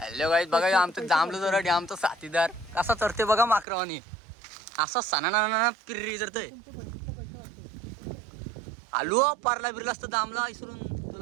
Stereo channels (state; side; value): drops out; left; at 3.7 s